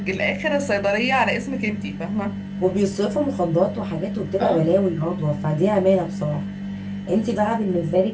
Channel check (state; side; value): identical; both; correlation 1.00